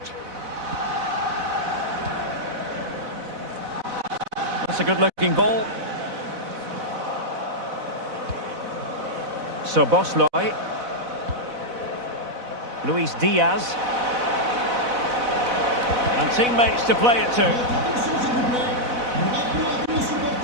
That's a good-looking ball. So Bosloy. Luis Diaz. And teammates to play it to.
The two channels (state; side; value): late; left; 4.0 ms